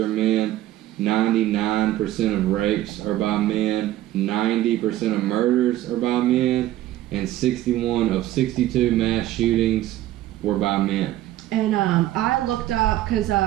men, 99% of rapes are by men, 90% of murders are by men, and 61 of 62 mass shootings were by men. And I looked up, because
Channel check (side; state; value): left; quieter; 14.3 dB